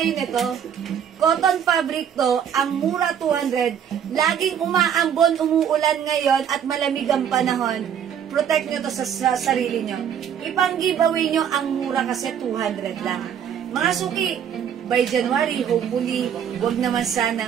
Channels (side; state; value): left; quieter; 8.6 dB